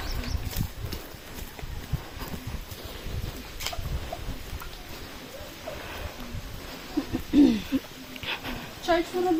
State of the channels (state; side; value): identical; both; correlation 1.00